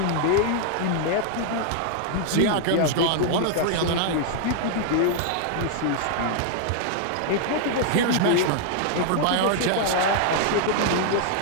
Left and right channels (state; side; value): different; both; correlation 0.00